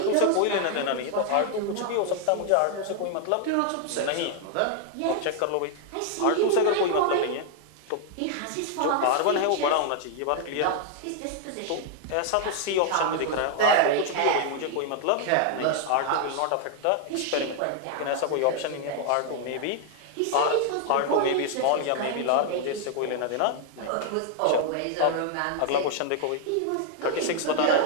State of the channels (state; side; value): different; both; correlation 0.00